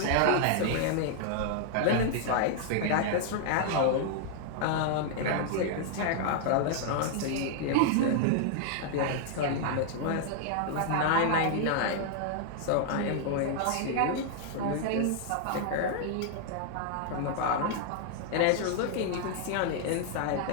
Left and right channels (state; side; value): different; both; correlation 0.00